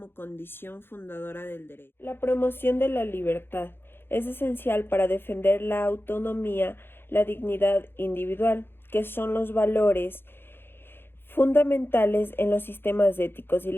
condición fundadora del derecho. La promoción de la libertad es esencial para defender la autonomía, la dignidad individual, que son los valores fundamentales en los sistemas éticos y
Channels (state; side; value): late; right; 0.10 ms